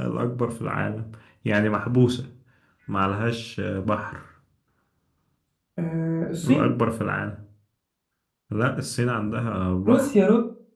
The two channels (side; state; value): both; identical; correlation 1.00